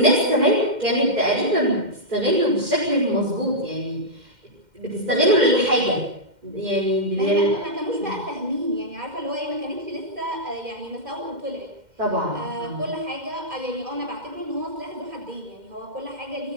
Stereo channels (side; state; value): left; late; 2.1 ms